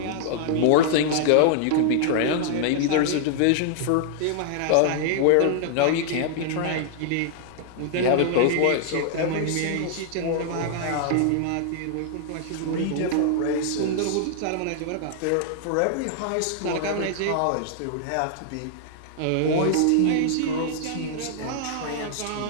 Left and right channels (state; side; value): different; both; correlation -0.01